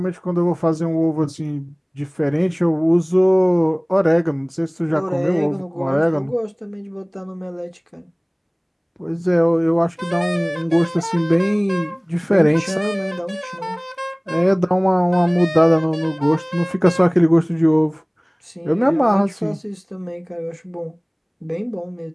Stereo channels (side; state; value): both; identical; correlation 1.00